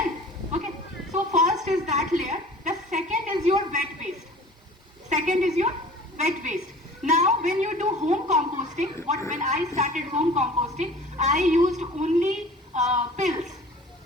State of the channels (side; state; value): both; normal; correlation 0.44